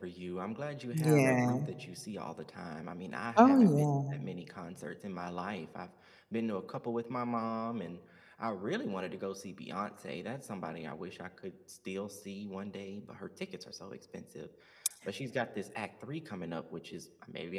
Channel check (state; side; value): identical; both; correlation 1.00